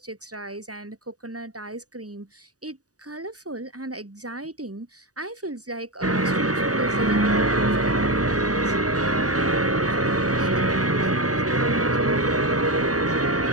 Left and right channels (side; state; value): left; late; 0.67 ms